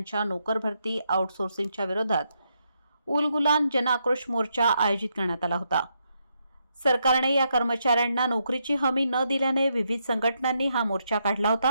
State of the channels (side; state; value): both; inverted; correlation -0.80